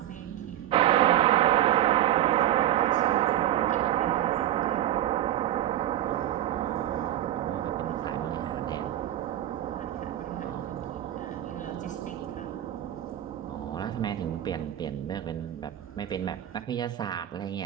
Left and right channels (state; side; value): quieter; left; 12.4 dB